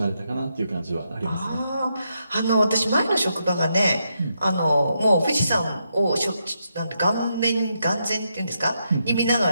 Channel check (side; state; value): both; inverted; correlation -0.81